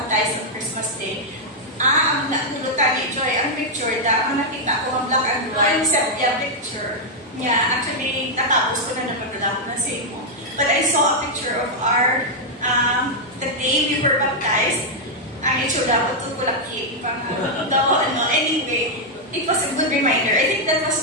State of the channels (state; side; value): normal; both; correlation -0.03